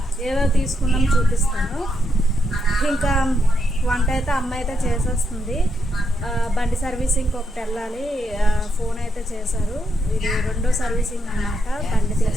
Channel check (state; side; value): normal; both; correlation 0.80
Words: ఏవో తీసుకున్నాము చూపిస్తాను. ఇంకా వంట అయితే అమ్మ అయితే చేసేస్తుంది. బండి సర్వీసింగ్ ఒకటి వెళ్ళాలి. ఫోన్ అయితే చేశారు. ఇది రెండో సర్వీసింగ్ అన్నమాట. బండి